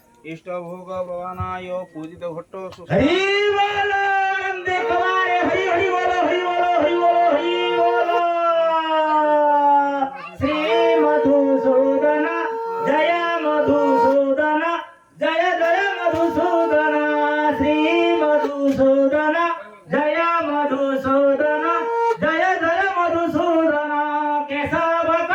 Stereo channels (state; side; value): identical; both; correlation 1.00